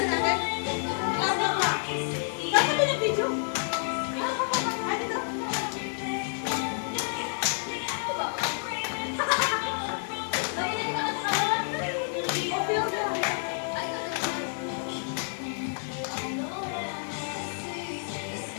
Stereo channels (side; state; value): right; silent; digital silence